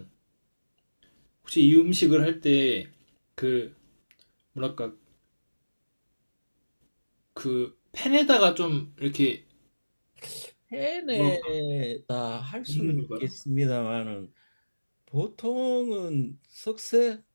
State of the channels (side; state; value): both; inverted; correlation -1.00